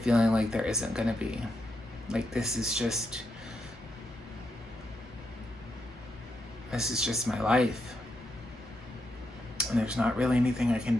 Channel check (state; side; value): normal; both; correlation 0.83